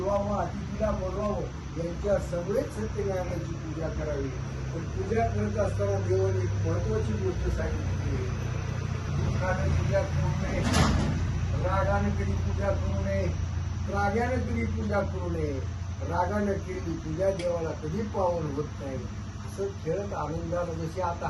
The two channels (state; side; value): identical; both; correlation 1.00